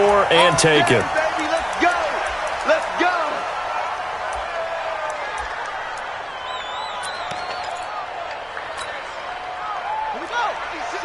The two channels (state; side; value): identical; both; correlation 1.00